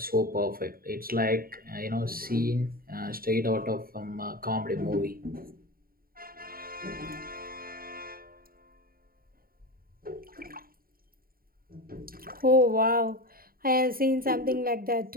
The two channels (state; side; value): late; left; 0.43 ms